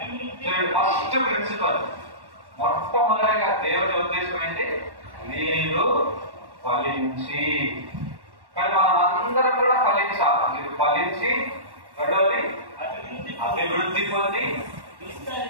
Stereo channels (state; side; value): late; left; 1.1 ms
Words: ఫస్ట్ ప్రిన్సిపల్, మొట్టమొదటిగా దేవుడి ఉద్దేశం ఏంటి? మీరు ఫలించి. కానీ మనం అందరం కూడా ఫలించాలి. మీరు ఫలించి, రెండవది అభివృద్ధి పొంది,